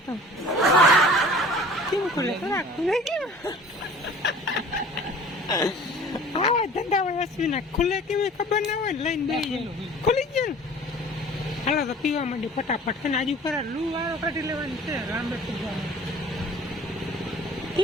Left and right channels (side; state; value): both; normal; correlation 0.46